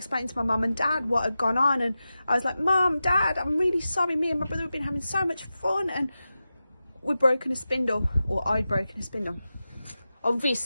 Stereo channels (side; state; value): both; inverted; correlation -0.93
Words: to my mum and dad what had gone on, and I was like, Mum, Dad, I'm really sorry, me and my brother have been having so much fun and we'd broken a spindle, or I'd broken a spindle.